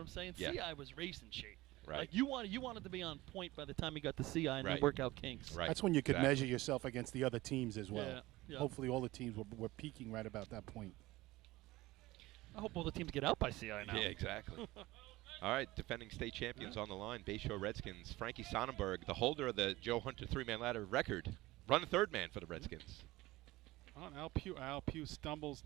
I'm saying? Yeah. CI was racing shape. Right. Like you wanted to be on point by the time you got to CI and then Right. work out kinks. Right. That's when you could Exactly. measure yourself against the other teams as well. Yeah, yeah. Hopefully all the teams were peaking right about that point. I hope all the teams get out by CI now. Yeah, exactly. All right, defending state champions on the line, Bayshore Redskins. Frankie Sonnenberg, the holder of the Joe Hunter 3-man ladder record, run third man for the Redskins. Al Pugh stumbles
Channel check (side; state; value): left; quieter; 18.9 dB